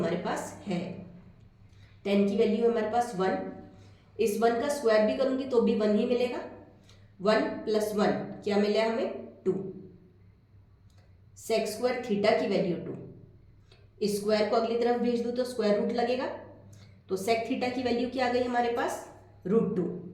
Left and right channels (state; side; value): identical; both; correlation 1.00